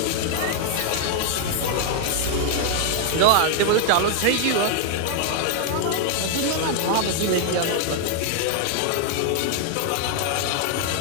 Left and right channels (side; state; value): both; different; correlation 0.00